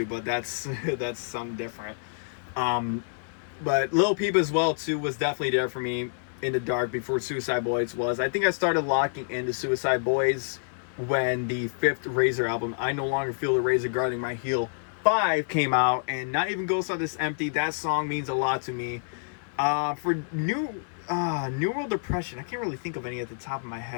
but that's something different. But Lil Peep as well too was definitely there for me in the dark before Suicide Boys was. I think I started locking into Suicide Boys when the 5th Razor album, I No Longer Feel the Razor Guarding My Heel 5, came out, and Not Even Ghosts Are This Empty. That song means a lot to me. For New World Depression, I can't really think of any at the top of my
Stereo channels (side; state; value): right; silent; 60 dB below the other